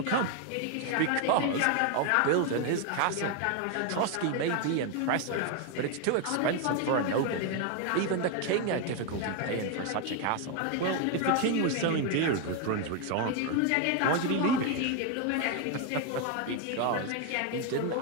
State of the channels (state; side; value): different; both; correlation 0.01